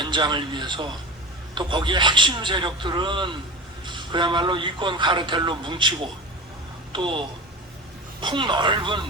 위해서 또 거기에 핵심 세력들은 그야말로 이권 카르텔로 뭉치고 또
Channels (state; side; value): normal; both; correlation 0.30